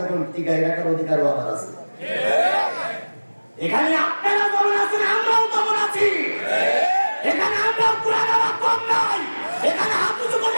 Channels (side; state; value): both; inverted; correlation -1.00